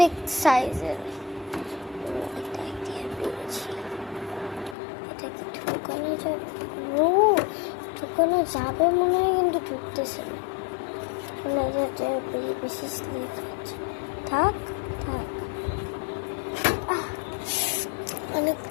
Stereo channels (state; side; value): drops out; right; at 4.8 s